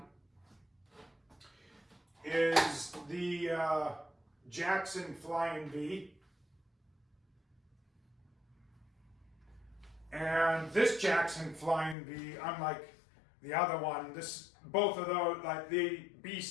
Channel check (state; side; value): drops out; right; at 12.0 s